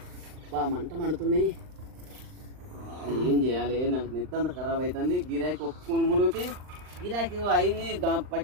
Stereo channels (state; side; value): late; left; 39 ms